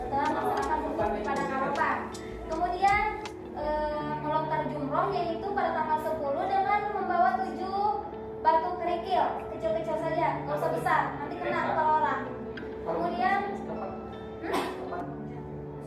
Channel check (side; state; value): both; identical; correlation 1.00